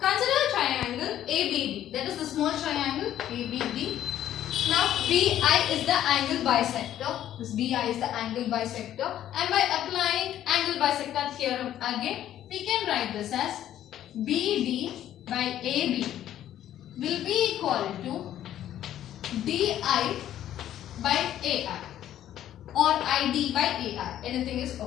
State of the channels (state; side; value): quieter; right; 11.8 dB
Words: a triangle ABD. That is the small triangle ABD. Now BI is the angle bisector. This BI is the angle bisector. And by applying angle bisector theorem again, we can write this as BD by AB will be equal to DI by AI or ID by AI. Anything is